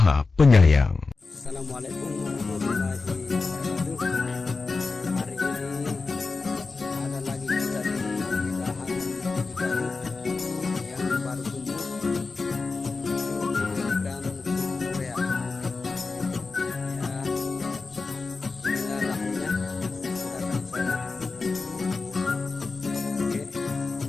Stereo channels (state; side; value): quieter; right; 4.1 dB